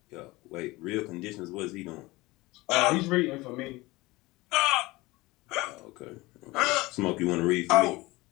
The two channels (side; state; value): right; quieter; 21.2 dB